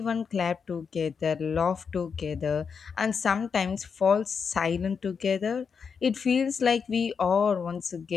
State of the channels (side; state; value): right; quieter; 6.1 dB